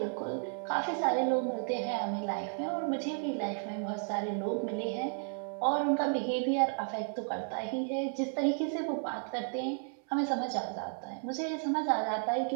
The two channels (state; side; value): silent; left; 56 dB below the other